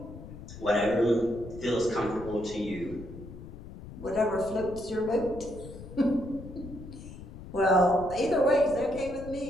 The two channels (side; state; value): left; noise; rumble, 13 dB below the sound